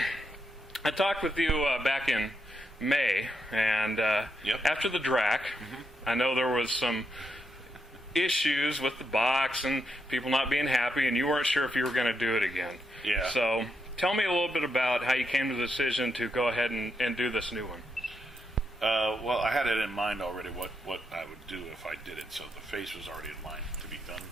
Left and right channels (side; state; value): both; normal; correlation 0.82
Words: I talked with you back in May, and after the DRAC, I know there was some issues with the box and people not being happy, and you weren't sure if you were going to do it again. Yeah. So tell me a little bit about how you came to the decision to go ahead and do this new one. Well, I had it in mind already what I would do if I did it, so the face was already in mind to be done.